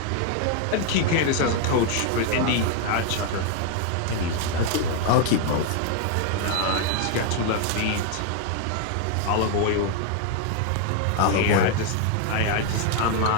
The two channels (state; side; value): different; both; correlation 0.00